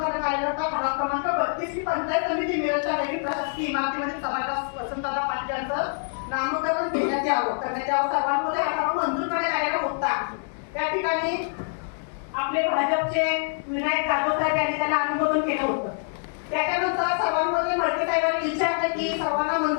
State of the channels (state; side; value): silent; right; digital silence